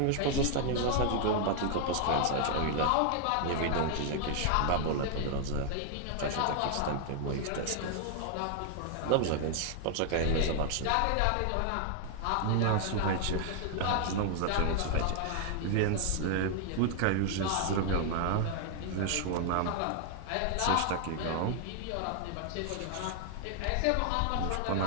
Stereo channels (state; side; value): different; both; correlation 0.00